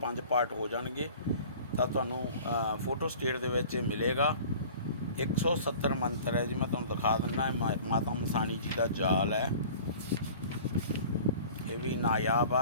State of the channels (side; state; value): both; inverted; correlation -0.44